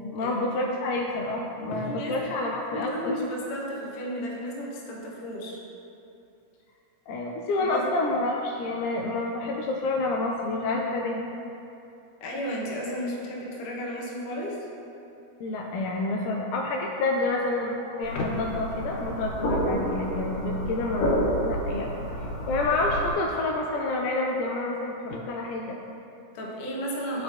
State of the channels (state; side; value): late; right; 17 ms